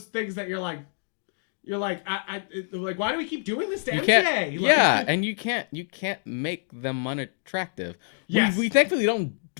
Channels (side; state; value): right; silent; digital silence